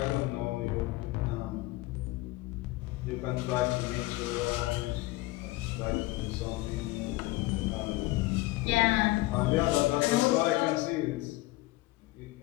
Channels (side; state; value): right; quieter; 19.7 dB